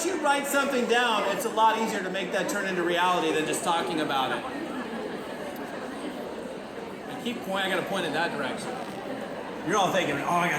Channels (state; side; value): identical; both; correlation 1.00